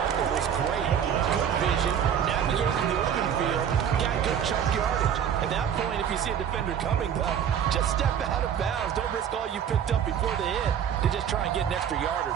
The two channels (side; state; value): left; quieter; 8.7 dB